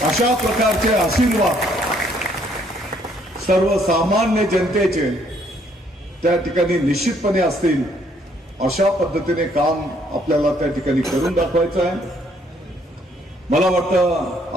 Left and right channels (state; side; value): normal; both; correlation 0.66